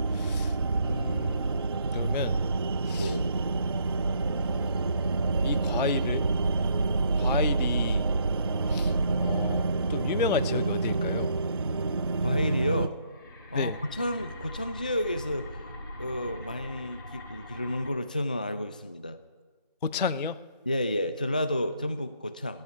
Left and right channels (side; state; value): both; inverted; correlation -0.70